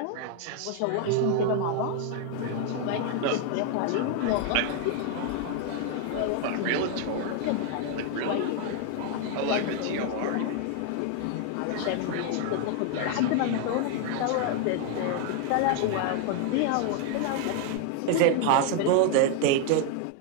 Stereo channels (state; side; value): different; both; correlation 0.00